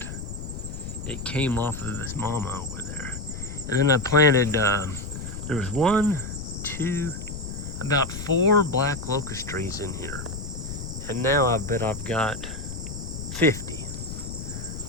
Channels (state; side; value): noise; left; rumble, 8 dB below the sound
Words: It came off of this mama over there. And then I planted, there was about 4 black locust trees in here. And now I bet I've got 50.